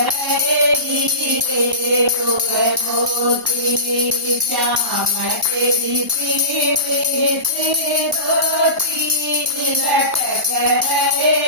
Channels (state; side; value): late; left; 1.0 ms